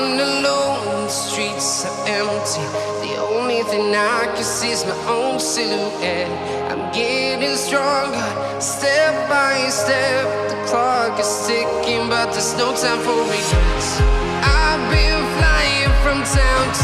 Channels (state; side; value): identical; both; correlation 1.00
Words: alone, the streets are empty. The only thing I can see is my own silhouette. I'm getting stronger, step by step. The clock is ticking, but there's no time for regrets. I've been flying from town